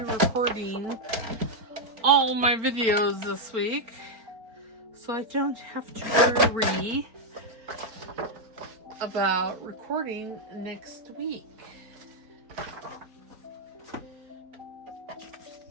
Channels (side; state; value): left; late; 4.4 ms